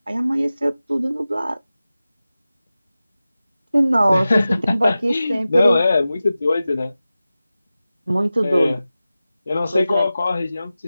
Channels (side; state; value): both; inverted; correlation -0.95